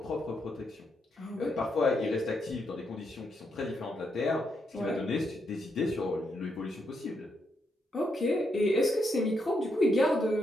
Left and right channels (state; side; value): normal; both; correlation 0.80